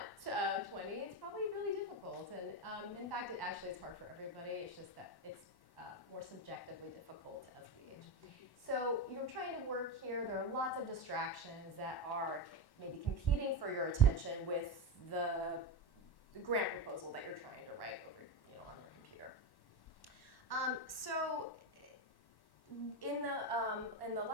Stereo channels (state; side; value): late; right; 1.1 ms